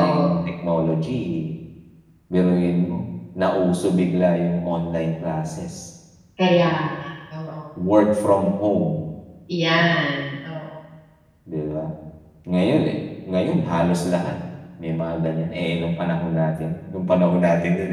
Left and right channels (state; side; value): identical; both; correlation 1.00